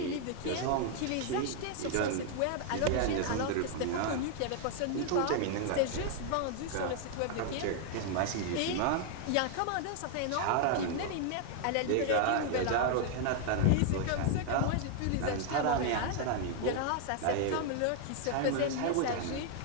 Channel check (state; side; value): different; both; correlation 0.00